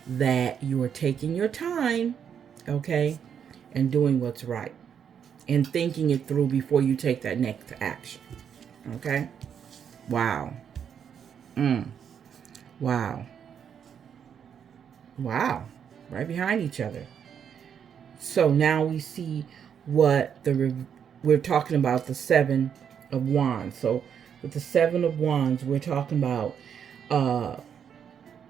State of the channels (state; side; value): quieter; left; 8.0 dB